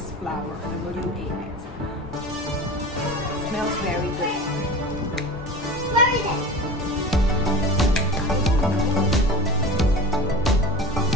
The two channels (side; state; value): both; normal; correlation 0.33